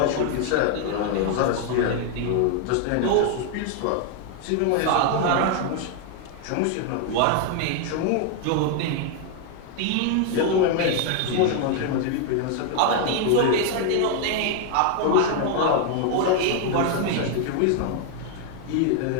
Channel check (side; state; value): both; different; correlation 0.00